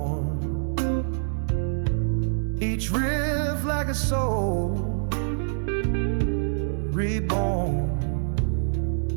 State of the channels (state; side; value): silent; left; digital silence